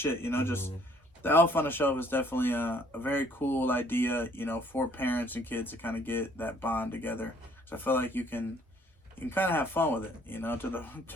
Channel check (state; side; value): normal; both; correlation 0.61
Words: you know, just the elf on the shelf is definitely a very cool idea, you know, for parents and kids to kind of get that bond together. So I feel like you can kind of have fun with it, you know, to